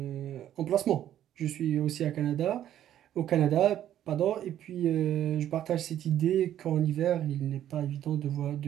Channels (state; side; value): quieter; left; 11.3 dB